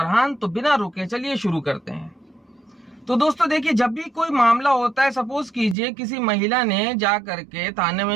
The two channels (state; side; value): drops out; left; at 5.8 s